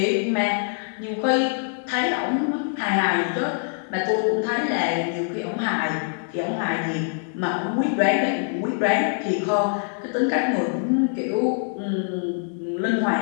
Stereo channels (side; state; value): right; silent; 63 dB below the other